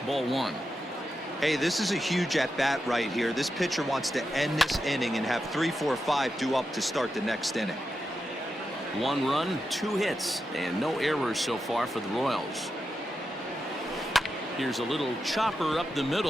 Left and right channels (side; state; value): both; normal; correlation 0.88